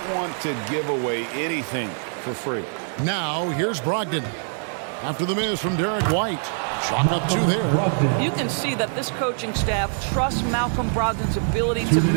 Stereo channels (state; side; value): silent; left; 56 dB below the other